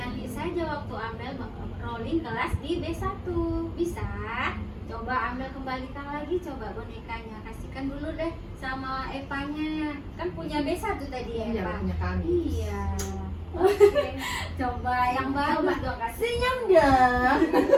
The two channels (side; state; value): both; identical; correlation 1.00